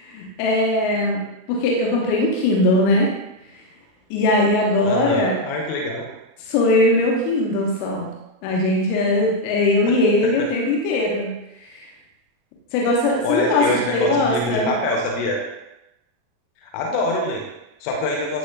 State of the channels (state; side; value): late; right; 38 ms